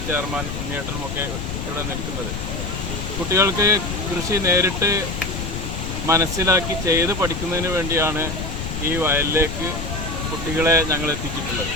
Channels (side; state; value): left; noise; rumble, 5 dB below the sound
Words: ചെയർമാൻ ഉണ്ണിയേട്ടനുമൊക്കെ ഇവിടെ നിൽക്കുന്നത്. കുട്ടികൾക്ക് കൃഷി നേരിട്ട് മനസ്സിലാക്കി ചെയ്ത് പഠിക്കുന്നതിന് വേണ്ടിയാണ് ഈ വയലിലേക്ക് കുട്ടികളെ ഞങ്ങൾ എത്തിച്ചിട്ടുള്ളത്.